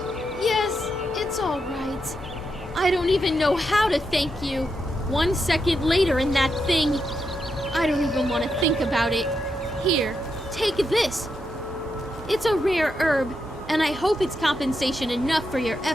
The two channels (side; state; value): both; normal; correlation 0.84